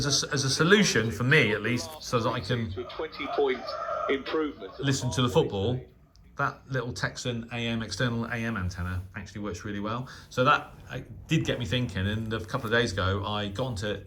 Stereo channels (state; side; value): identical; both; correlation 1.00